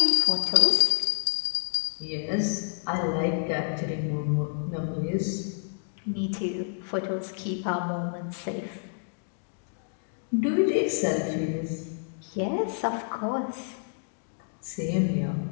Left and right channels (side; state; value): right; silent; digital silence